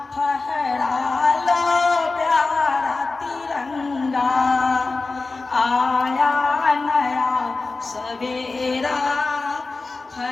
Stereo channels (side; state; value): right; quieter; 3.7 dB